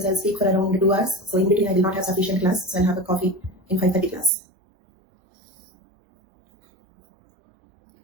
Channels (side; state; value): left; drops out; at 4.3 s